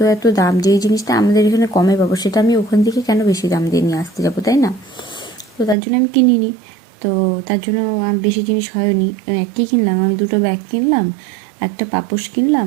এত দাম, যেই জিনিসটা আমাদের এখানে কমে পাবো সেটা আমি ওখান থেকে কেন বেশি দাম দিয়ে নিয়ে আসতে যাবো, তাই না? তো তার জন্য আমি কিনিনি। তো তার জন্য বেশি জিনিস হয়নি। কী কিনলাম আমি, দুটো ব্যাগ কিনলাম, একটা পাপোশ কিনলাম,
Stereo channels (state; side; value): drops out; left; at 5.8 s